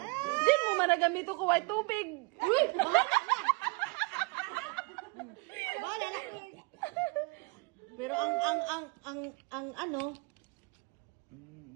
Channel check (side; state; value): left; quieter; 27.7 dB